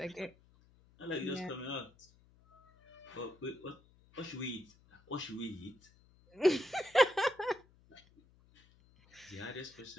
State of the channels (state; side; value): noise; left; hum, 28 dB below the sound